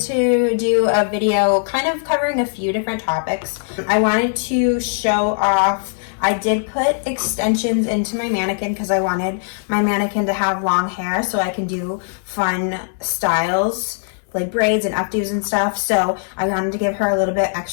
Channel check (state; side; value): silent; right; digital silence